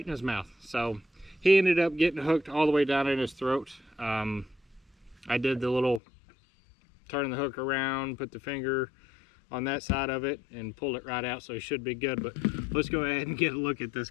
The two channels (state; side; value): drops out; right; at 6.0 s